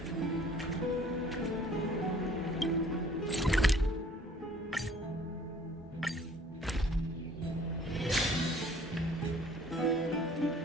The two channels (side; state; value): both; normal; correlation 0.55